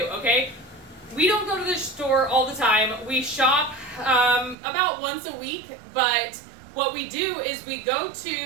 okay? We don't go to the store all the time. We shop about once a week, but what we do is we go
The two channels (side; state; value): left; drops out; at 4.5 s